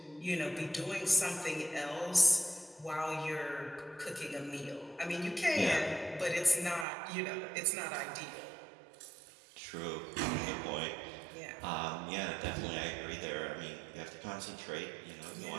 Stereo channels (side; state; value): left; drops out; at 6.9 s